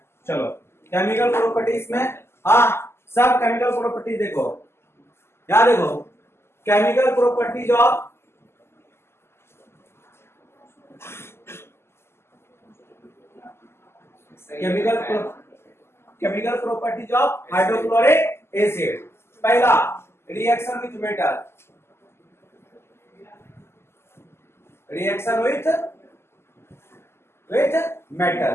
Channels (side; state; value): right; late; 0.12 ms